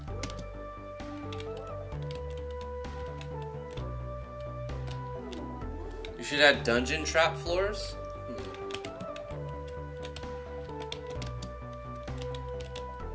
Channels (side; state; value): both; identical; correlation 1.00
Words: You should add dungeon trap floors.